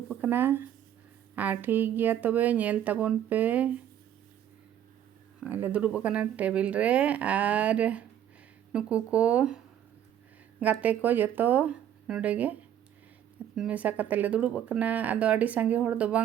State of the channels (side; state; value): left; quieter; 10.3 dB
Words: कना और ठीक गया तबे नेल ताबन पे आले दुड़ुब कना टेबिल रे और नुकु को गाते को जतो नोडे गे मेसा कते ले दुड़ुब कना आदो आडी सांगे होड़ दो